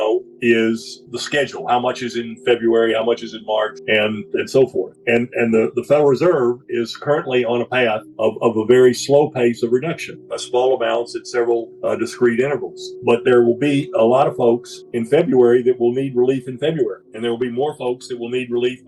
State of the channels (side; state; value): both; identical; correlation 1.00